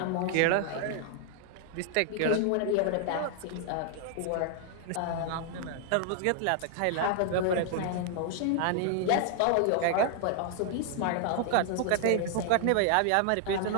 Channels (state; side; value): different; both; correlation 0.00